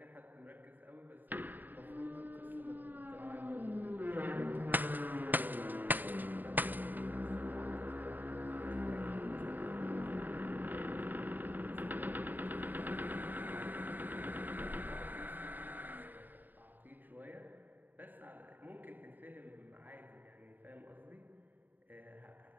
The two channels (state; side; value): late; left; 0.088 ms